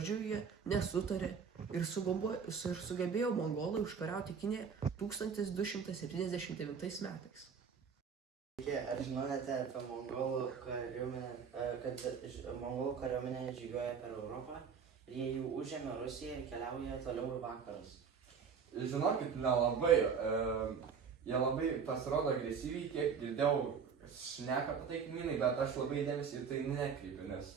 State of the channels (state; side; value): quieter; left; 6.4 dB